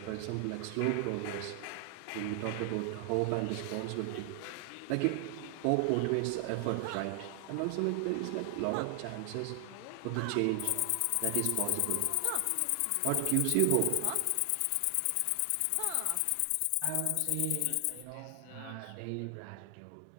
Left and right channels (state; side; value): different; both; correlation 0.00